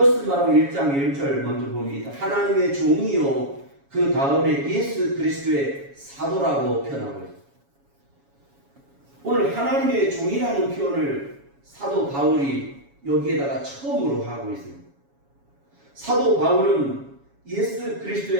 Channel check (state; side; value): late; left; 7.2 ms